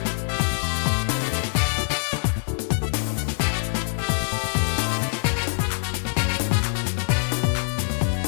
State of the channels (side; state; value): right; silent; digital silence